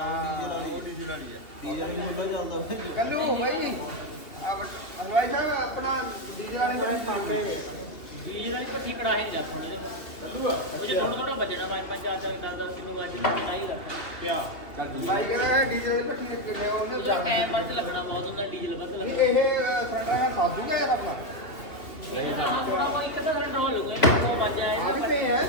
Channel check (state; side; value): late; right; 2.8 ms